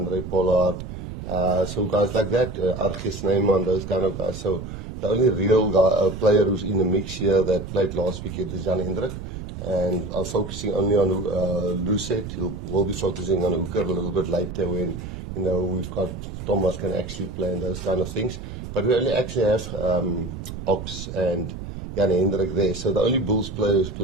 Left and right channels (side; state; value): right; noise; rumble, 9 dB below the sound